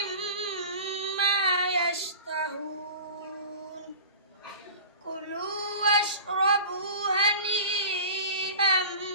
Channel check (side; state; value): both; inverted; correlation -0.37